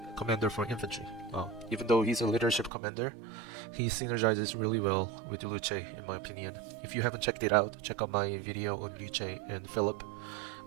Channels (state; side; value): drops out; left; at 2.7 s